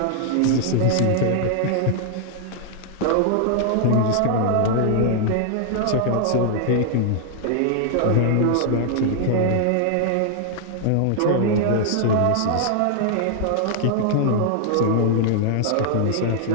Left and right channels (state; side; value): different; both; correlation 0.00